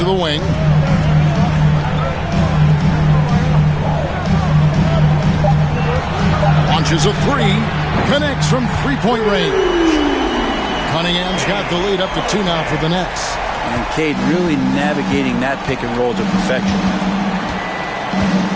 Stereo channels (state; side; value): identical; both; correlation 1.00